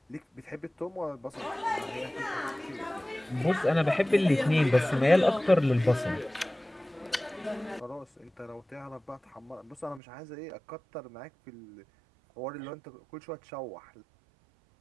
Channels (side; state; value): left; drops out; at 10.0 s